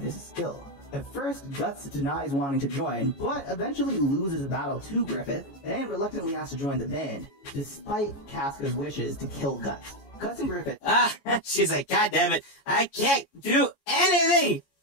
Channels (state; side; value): late; right; 14 ms